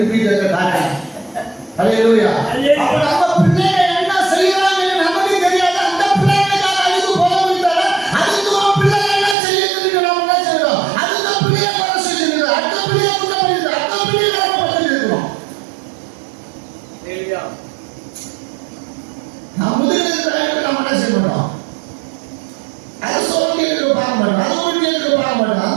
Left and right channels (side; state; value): left; drops out; at 9.3 s